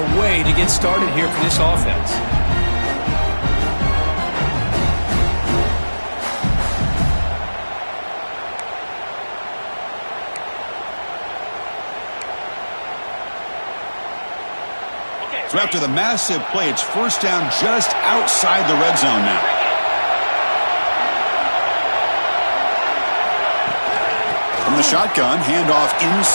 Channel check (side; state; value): both; inverted; correlation -1.00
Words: way to get started here for this offense. So after the massive play, it's first down just outside the red zone now. From the shotgun, handoff